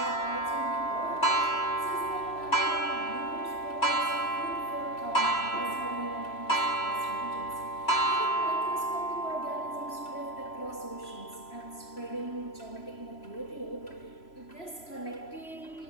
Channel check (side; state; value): right; late; 3.0 ms